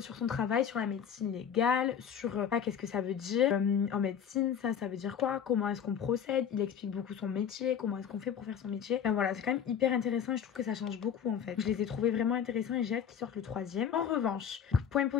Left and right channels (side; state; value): right; quieter; 8.2 dB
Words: sur son travail, sur la médecine légale, sur qu'est-ce que ça veut dire en médecine, ça veut dire quoi, comment est-ce qu'on procède. Il explique beaucoup son métier, comment est-ce qu'on fait pour faire son métier. Enfin voilà, c'est quand même hyper intéressant et je trouve que ça change beaucoup en fait. Je les ai trouvés vraiment intéressants et j'ai hâte qu'ils sortent le troisième. En revanche, point